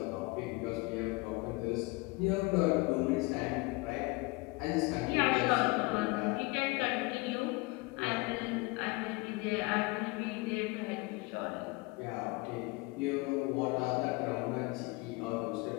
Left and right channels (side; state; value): right; quieter; 25.1 dB